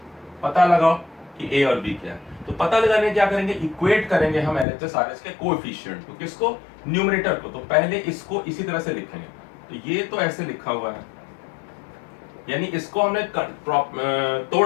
पता लगाओ कि ए और बी क्या है। तो पता लगाने क्या करेंगे, इक्वेट करेंगे हम एलएचएस आरएच के कोएफिशिएंट को, किसको, न्यूमरेटर को। तो पहले इसको इसी तरह से लिखेंगे, तो ये तो ऐसे लिखा हुआ है, यानी इसको हमने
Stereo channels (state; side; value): drops out; right; at 4.7 s